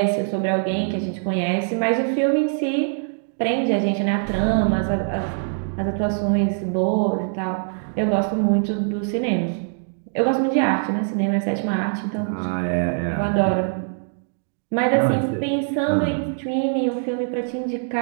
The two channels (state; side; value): silent; left; digital silence